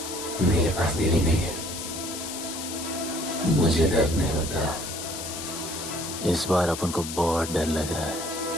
मेरे पास दिल ही नहीं है, मुझे दर्द नहीं होता। इस बार अपन को बहुत डर लग रहा है।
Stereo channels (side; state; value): left; noise; hiss, 8 dB below the sound